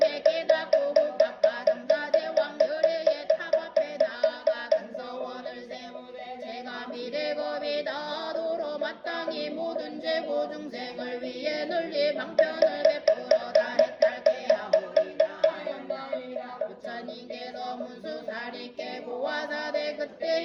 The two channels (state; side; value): identical; both; correlation 1.00